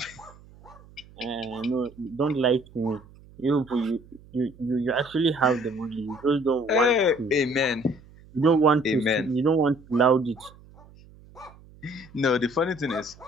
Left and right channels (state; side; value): noise; right; hum, 23 dB below the sound